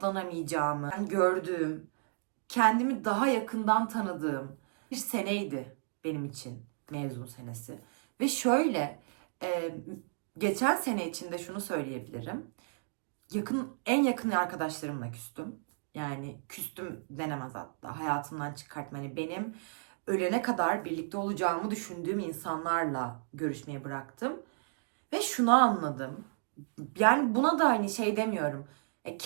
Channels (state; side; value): silent; left; digital silence